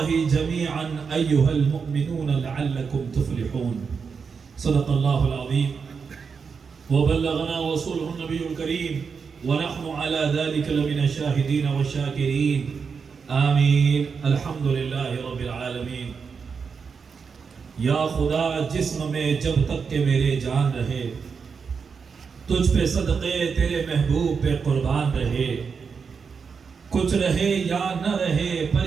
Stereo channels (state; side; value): quieter; left; 5.7 dB